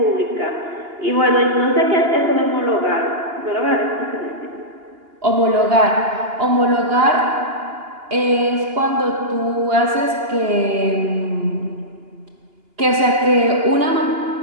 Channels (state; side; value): late; left; 2.8 ms